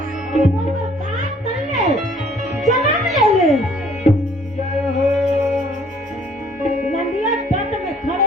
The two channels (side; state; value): both; normal; correlation 0.59